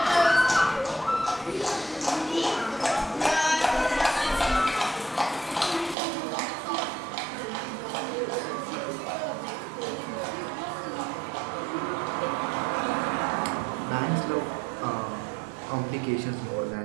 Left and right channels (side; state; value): left; drops out; at 6.0 s